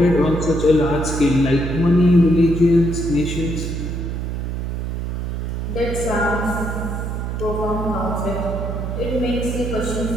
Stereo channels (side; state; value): right; noise; hum, 3 dB below the sound